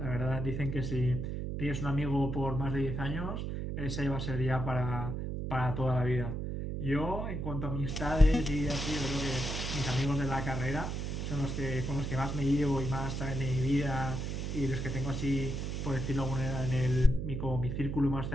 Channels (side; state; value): right; noise; hum, 3 dB below the sound